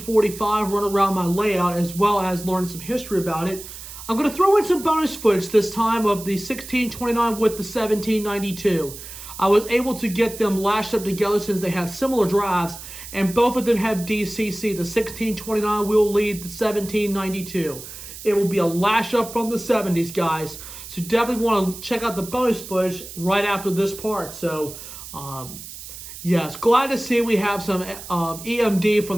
run around my layout, as well as learning some history about it. I'm going to throw in some bonus footage this time of the 1629 with the 1792. I was able to get them lashed up together since they have similar drives, and both of them have DCC. The 1629 will lead the 1792. It will be a lash up from the 70s, guys. So definitely want to check out the bonus footage right after this part. So, yes, glad to see we have some EMD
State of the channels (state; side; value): noise; right; hiss, 13 dB below the sound